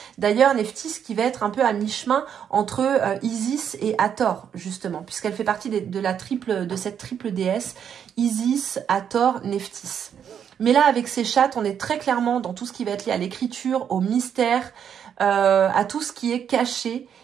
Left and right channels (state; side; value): quieter; left; 8.3 dB